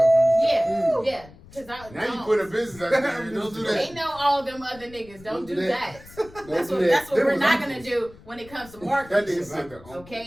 I'm just Yeah, Mm. yeah. Because I Now you don't. put a business out there. Don't do They that. know all them other niggas. Don't do that. Don't That's do what, that. that's what Them we're was not gonna uncles. do when it comes to That marketing. nigga said the uncles.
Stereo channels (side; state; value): left; noise; rumble, 21 dB below the sound